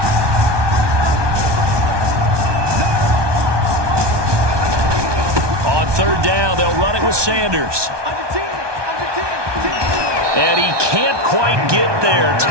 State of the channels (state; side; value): late; left; 1.2 ms